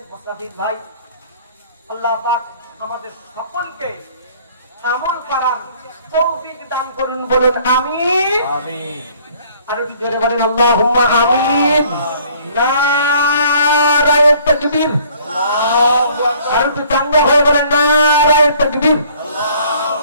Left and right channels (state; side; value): inverted; both; correlation -0.57